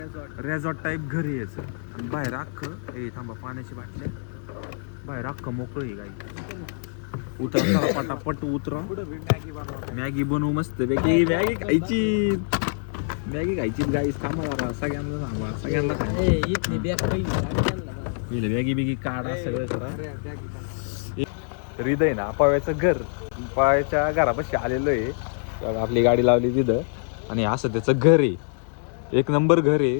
रेझॉर्ट टाईप घर आहे याचं. आणि बाहेर अख्खं ए थांबा, पाण्याची बाटल्या. बाहेर अख्खं मोकळं आहे गाई. उतर पटापट उतर. मॅगी बनवू मस्त पैकी. मॅगी खायची, मॅगी खायची गाई. थांबा जरा, सगळ्यांना थांबा, सगळ्यांना पहिले मॅगी बिगी काढा, सगळं करा. हृदय ना पाव्याचं घर, पाव्याच्या घरापाशी आलेलो आहे. आपली गाडी लावली तिथं आणि असं त्याचं घर आहे. एक नंबर घर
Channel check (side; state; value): right; silent; 62 dB below the other